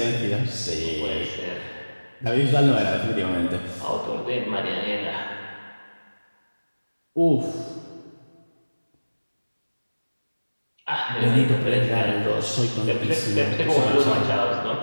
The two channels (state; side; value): inverted; both; correlation -1.00